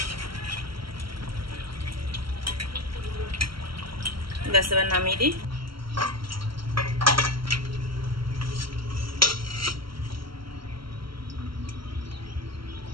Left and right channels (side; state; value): left; late; 0.74 ms